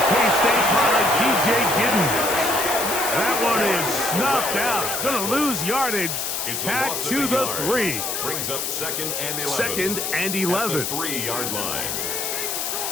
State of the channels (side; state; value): left; noise; hiss, 2 dB below the sound